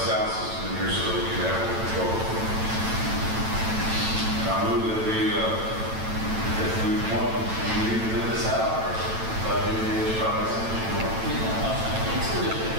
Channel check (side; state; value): left; late; 9.0 ms